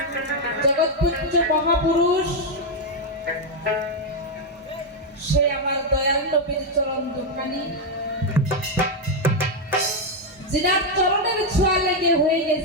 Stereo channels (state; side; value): normal; both; correlation 0.02